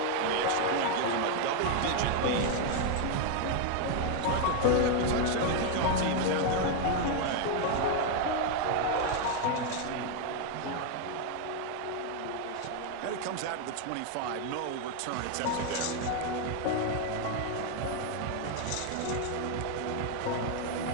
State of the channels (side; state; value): both; different; correlation 0.01